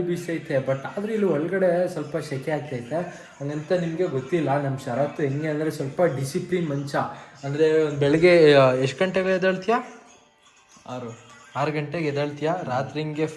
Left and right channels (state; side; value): identical; both; correlation 1.00